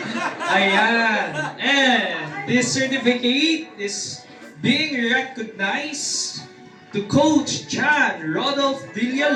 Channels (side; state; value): both; identical; correlation 1.00